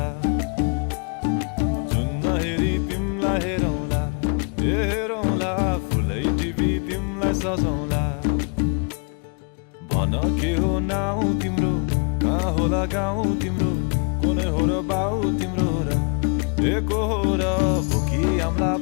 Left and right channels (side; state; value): right; quieter; 36.6 dB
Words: जुन नहेरी तिमलाई हेरौँला हेरौँला फुलै टिपी तिमलाई सजाउँला भन के हो नाउ तिम्रो कहाँ होला गाउँ तिम्रो कोने हो र बाउ तिम्रो र एको हो र भोकी आम्ला